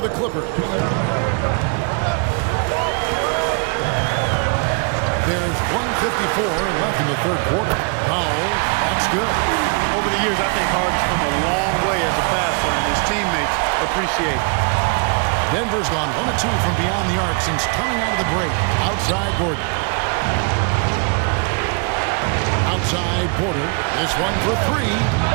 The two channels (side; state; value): left; quieter; 36.0 dB